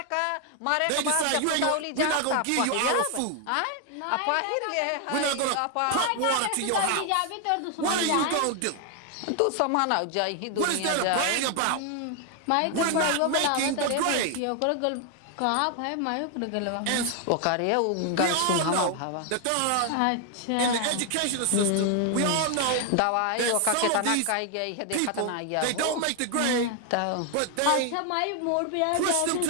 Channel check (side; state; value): both; different; correlation 0.00